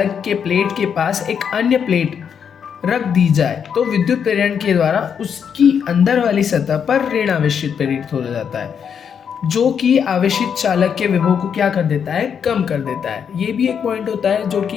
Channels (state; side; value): quieter; right; 7.4 dB